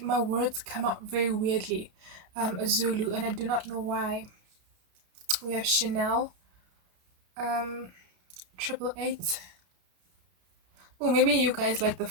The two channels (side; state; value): left; late; 33 ms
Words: my words come out very weirdly. A Zulu, and I do not know why. We have Chanel. 888. Oh, maybe you guys like the